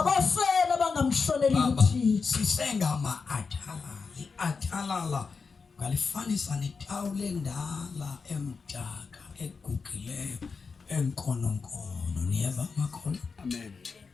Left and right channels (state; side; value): quieter; right; 5.0 dB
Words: abangamhloneli uThixo. sisengama-athalala. I-athalala ngalifanisa netawule endala emdaka egugileyo enkononkono. Niyeva makholwa? Amen.